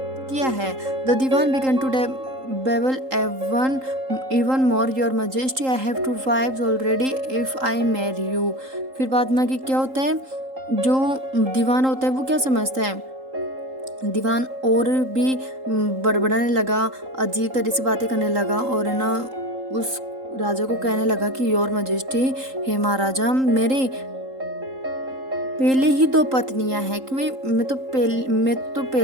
है। The Dewan began to babble even more, your majesty I have 2 wives already if I marry you। फिर बाद में कि क्या होता है? जो दीवान होता है वो क्या समझता है? दीवान और भी बड़बड़ाने लगा, अजीब तरह से बातें करने लगा और है ना उस राजा को कहने लगा कि योर मजेस्टी, हे महाराजा, मेरे पहले ही 2 पत्नियां हैं, कि मैं तो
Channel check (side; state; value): left; late; 3.8 ms